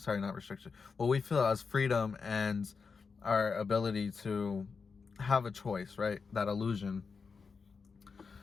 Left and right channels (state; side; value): quieter; right; 5.2 dB